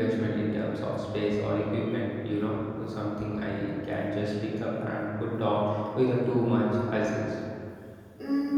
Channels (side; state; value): both; identical; correlation 1.00